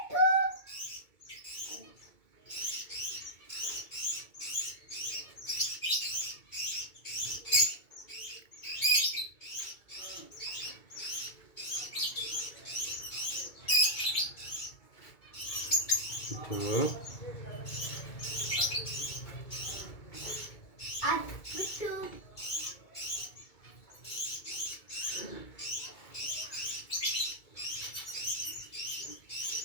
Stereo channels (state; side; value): late; right; 2.2 ms